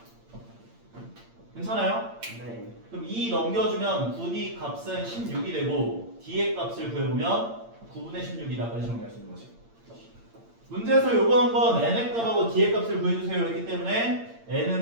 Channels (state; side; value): late; left; 8.7 ms